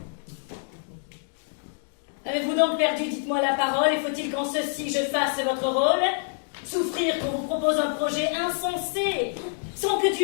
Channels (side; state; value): right; silent; digital silence